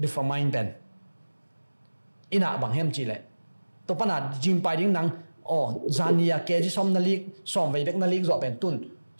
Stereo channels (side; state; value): both; inverted; correlation -1.00